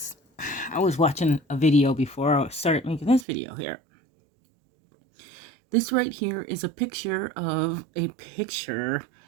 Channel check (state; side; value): drops out; left; at 3.2 s